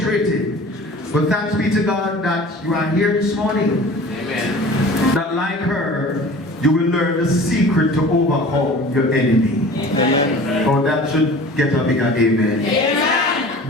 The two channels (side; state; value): both; normal; correlation 0.42